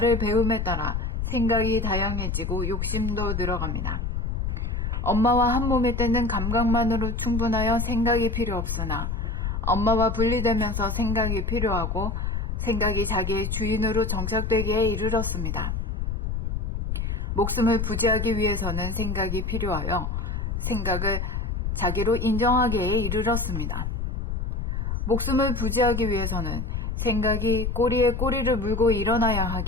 배움에 따라 생각이 다양해지고 욕심도 늘어갑니다. 엄마와 한 몸일 때는 감각만으로 충분하여 생각이 필요 없으나 엄마와 분리되면서 생각이 필요하고 생각이 자기의 주인으로 정착되기에 이르렀습니다. 목숨을 부지하기 위해서는 생각이 필요하여 생각을 자기로 인정하기에 이르렀습니다. 목숨을 부지하기 위해서는 생각이 꼬리에 꼬리를 물고 일어나야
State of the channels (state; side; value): noise; left; rumble, 2 dB below the sound